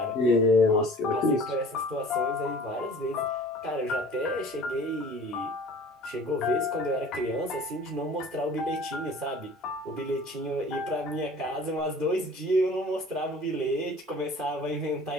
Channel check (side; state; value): both; normal; correlation 0.46